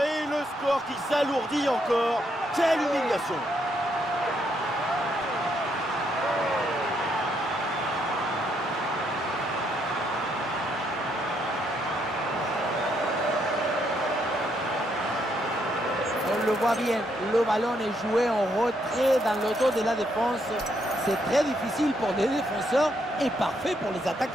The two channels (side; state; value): both; normal; correlation 0.75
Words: Et le score qui s'alourdit encore. Quelle humiliation. On le voit bien, le ballon est joué en retrait dans le dos de la défense. C'est très difficile pour les défenseurs et parfait pour les